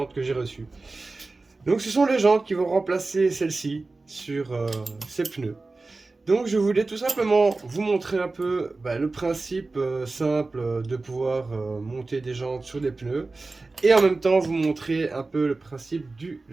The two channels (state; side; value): quieter; left; 3.5 dB